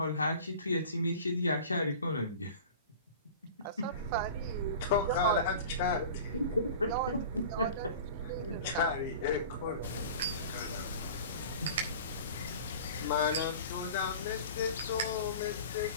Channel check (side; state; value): both; inverted; correlation -0.39